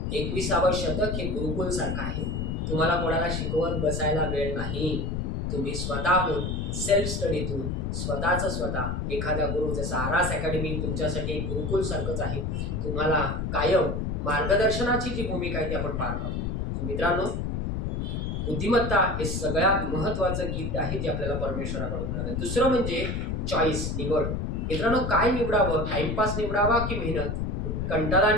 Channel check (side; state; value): left; noise; rumble, 2 dB below the sound